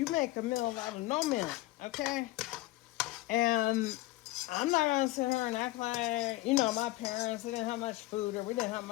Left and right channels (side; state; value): right; quieter; 18.4 dB